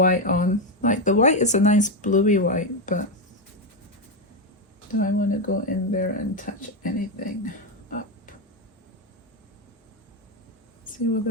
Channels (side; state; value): both; normal; correlation 0.07